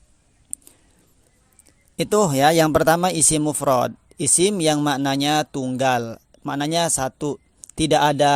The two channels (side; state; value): both; identical; correlation 1.00